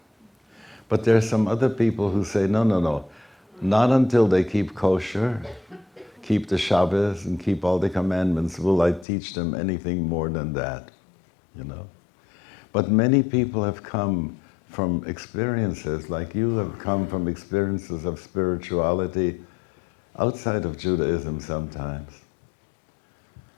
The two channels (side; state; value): right; drops out; at 9.1 s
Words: But there are some other people who say, no, no, no, not until they keep kosher, keep the Shabbos, and keep all the commandments will I teach them anything more than that, you know. But many people have come from experiences, like you have come from experiences of spirituality outside of Judaism sometimes,